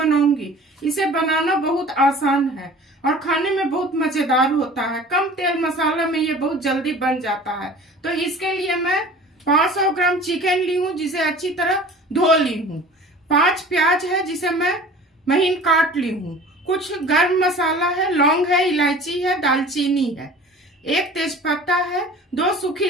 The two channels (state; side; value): normal; both; correlation 0.43